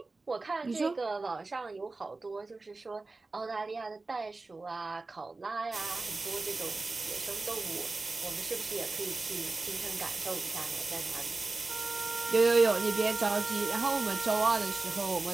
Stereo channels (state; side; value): quieter; left; 3.5 dB